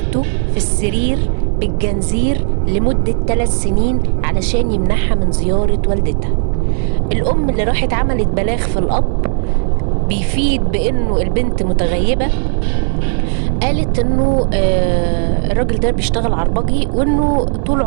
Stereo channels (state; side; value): silent; left; 69 dB below the other